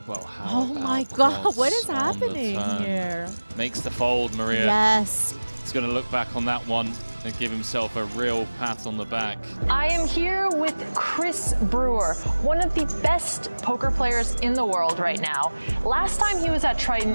Well, how Oh my God, what is happening here? Makes the fold, Maria. Yes. He's going to look back on that one and give himself a real pat on the back. I am here with Chris Brewer, one of the best poker players in the world right now. Last time he was at Triton,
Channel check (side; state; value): both; inverted; correlation -1.00